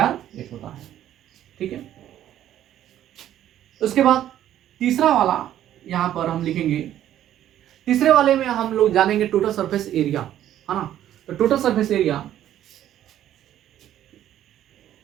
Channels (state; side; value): quieter; left; 11.8 dB